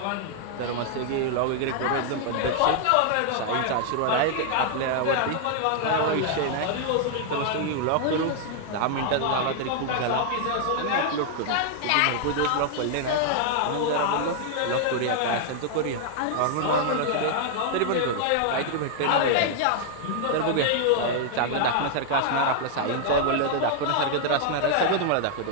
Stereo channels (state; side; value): different; both; correlation -0.01